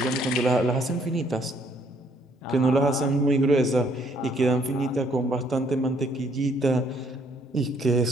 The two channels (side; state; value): both; normal; correlation 0.66